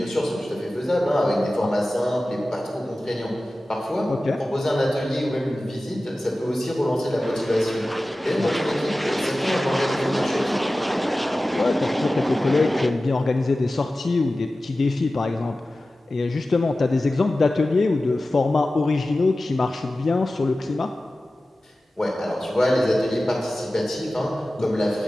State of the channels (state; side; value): normal; both; correlation 0.96